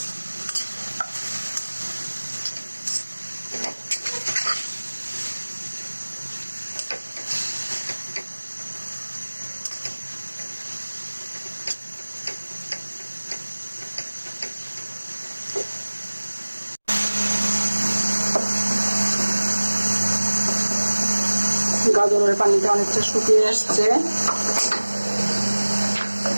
গাজরের পানিটা অনেকটা শুকিয়ে আসছে।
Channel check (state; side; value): inverted; both; correlation -1.00